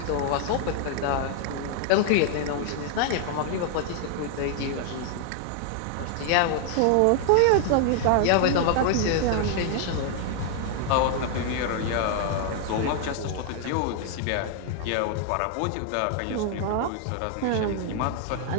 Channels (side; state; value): both; different; correlation 0.00